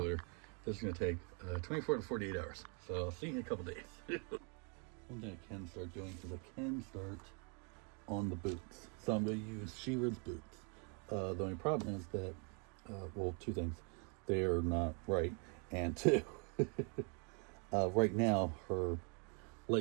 This is going to take 24 to 48 hours. So I'll see you in a couple days. One thing I can start doing is I can start on the boots. So I'm going to use She-Ra's boots. The only problem is that, well, two things. They are not right. And two, right now her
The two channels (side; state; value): left; quieter; 36.6 dB